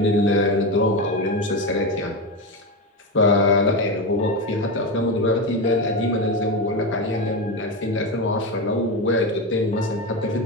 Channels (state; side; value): normal; both; correlation 0.16